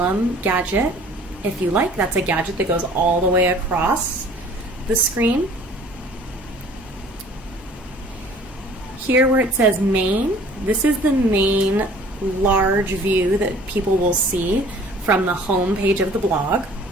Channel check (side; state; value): both; normal; correlation 0.51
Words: gadget if you like. That's a gadget that goes all the way across the screen. Here where it says main, this is the main large view that people will see from the home page of the blog.